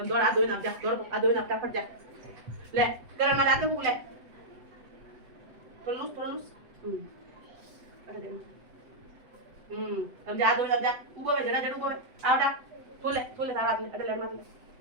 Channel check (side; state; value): left; late; 8.0 ms